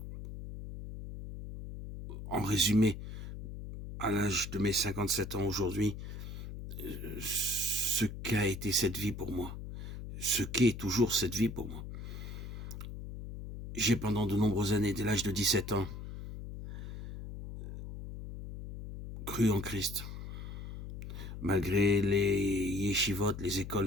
en résumé, à l'âge de mes 57 ans aujourd'hui, ce qu'a été cette vie pour moi, ce qu'est toujours cette vie pour moi. J'ai pendant de nombreuses années, dès l'âge de 17 ans, cru en Christ. Malgré les yeshivot, les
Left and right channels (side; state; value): left; noise; hum, 9 dB below the sound